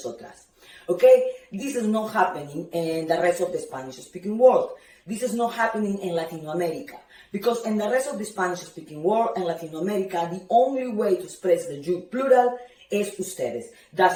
okay? This is not happening in the rest of the Spanish-speaking world. This is not happening in Latin America. Because in the rest of the Spanish-speaking world and Latin America, the only way to express the you plural is ustedes.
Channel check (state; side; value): identical; both; correlation 1.00